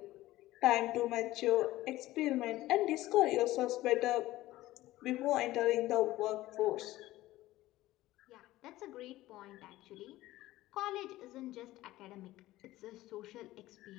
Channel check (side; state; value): right; quieter; 16.6 dB